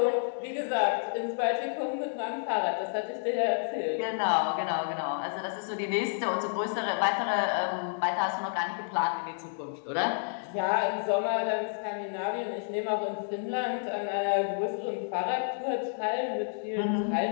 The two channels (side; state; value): right; silent; digital silence